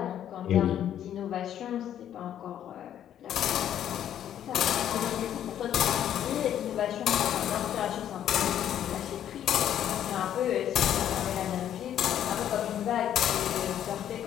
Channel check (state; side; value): quieter; right; 10.5 dB